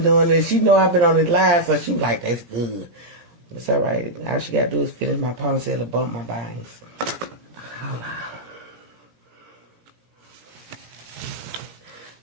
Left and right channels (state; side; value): late; left; 17 ms